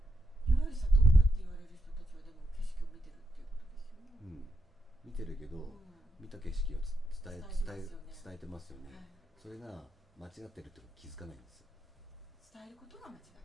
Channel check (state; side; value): normal; both; correlation 0.85